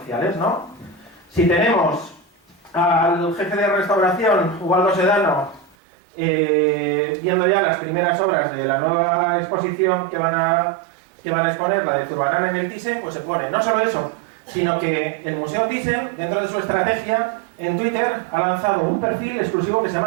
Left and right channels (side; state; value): left; drops out; at 5.8 s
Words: ¿no? Si tenemos al jefe de restauración, Ubaldo Sedano, viendo ya las primeras obras de la nueva exposición que van a exponer, la de Zurbarán en el Thyssen, pues se pone no solo eso, sino que el Museo Thyssen, dentro de su estrategia, en Twitter ha lanzado un perfil exclusivo que se